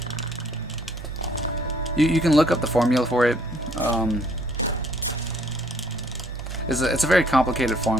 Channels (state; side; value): normal; both; correlation 0.61